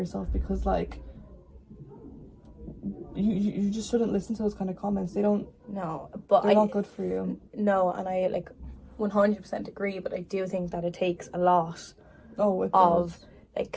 because like you just shouldn't listen to those kind of comments. They're not good for you. No, and I like 100% agree, but I do think that it takes a lot like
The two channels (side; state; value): both; identical; correlation 1.00